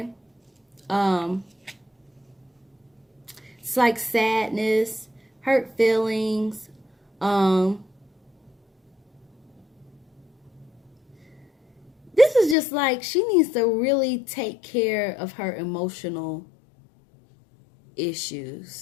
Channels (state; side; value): drops out; right; at 12.6 s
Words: It's like sadness, hurt feelings, this is just like she needs to really take care of her emotional